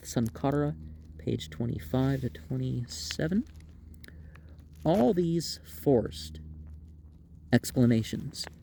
Sankara, page 25 to 27. All these forced explanations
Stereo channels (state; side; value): identical; both; correlation 1.00